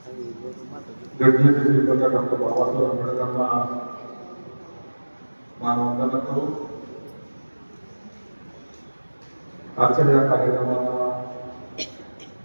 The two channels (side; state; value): both; inverted; correlation -1.00